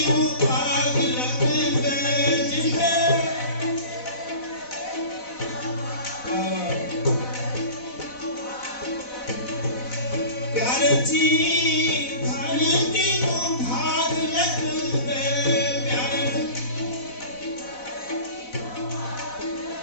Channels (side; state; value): right; late; 4.0 ms